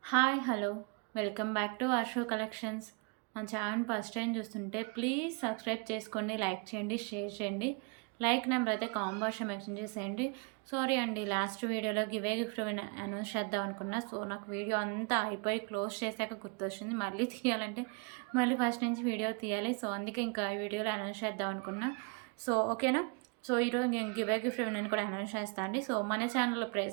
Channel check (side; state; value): left; quieter; 33.8 dB